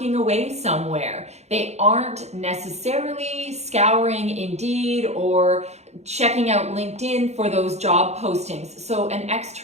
away somewhere. They aren't necessarily scouring Indeed or checking out LinkedIn for those job postings. So an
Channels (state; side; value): late; left; 0.32 ms